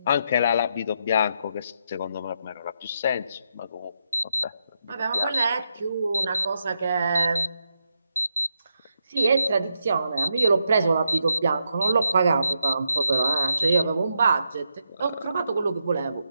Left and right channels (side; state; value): both; inverted; correlation -0.82